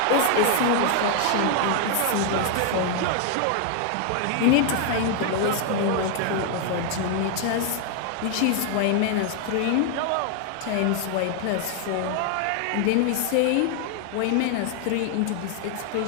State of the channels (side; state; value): both; different; correlation 0.00